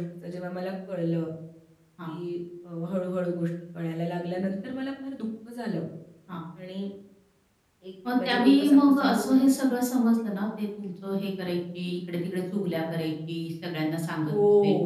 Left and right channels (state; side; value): identical; both; correlation 1.00